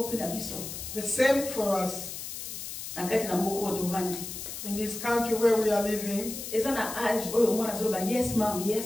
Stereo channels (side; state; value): left; noise; hiss, 8 dB below the sound